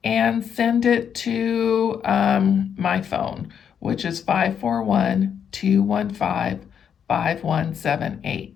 and send it to my phone, which is 541-215-5178.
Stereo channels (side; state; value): right; quieter; 8.0 dB